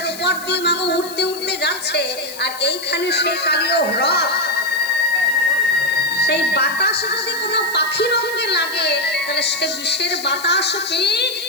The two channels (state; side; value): noise; left; hiss, 14 dB below the sound